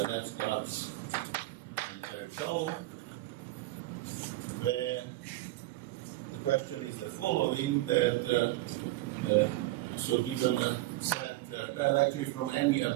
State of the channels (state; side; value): quieter; left; 17.7 dB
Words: and Terutau, where the question is the following, that so given a set, well, actually from any